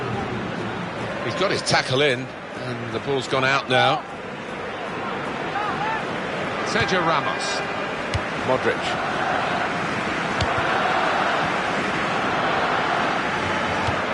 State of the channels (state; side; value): identical; both; correlation 1.00